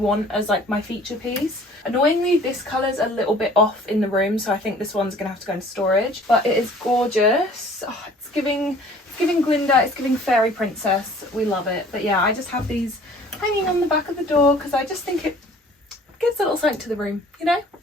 as like my feature piece. Annoyingly, this colour's a little bit off in the room, so I think this one's gonna have to go into storage. But it is gorgeous. Oh, it's giving Glinda, it's giving fairy princess. We love it. But yeah, I just have these hanging on the back of the door because I just think it gives a little something to the room, you know?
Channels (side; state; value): both; normal; correlation 0.51